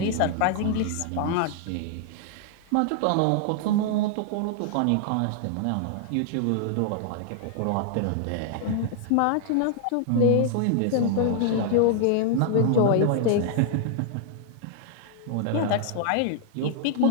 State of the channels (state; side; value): different; both; correlation 0.00